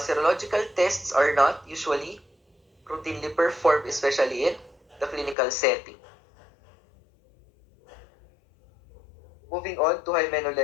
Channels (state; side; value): drops out; right; at 5.4 s